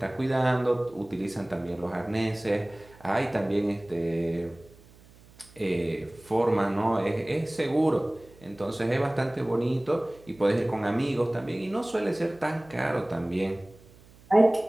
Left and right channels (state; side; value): noise; right; hum, 25 dB below the sound